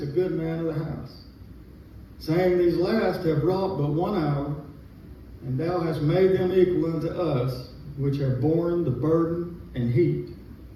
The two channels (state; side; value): identical; both; correlation 1.00